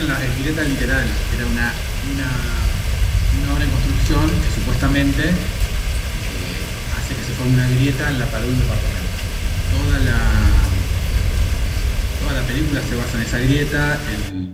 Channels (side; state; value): both; identical; correlation 1.00